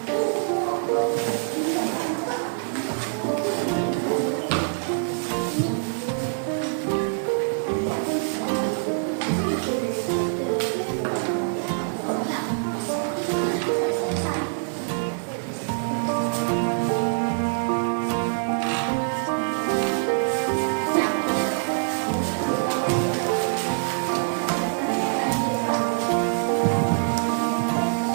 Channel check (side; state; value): left; silent; digital silence